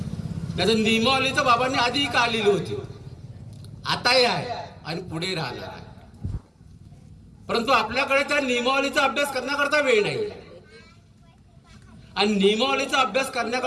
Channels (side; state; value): both; identical; correlation 1.00